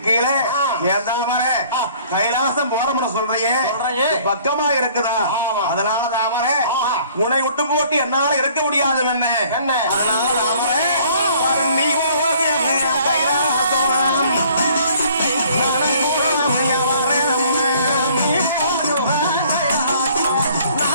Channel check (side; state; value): both; inverted; correlation -0.56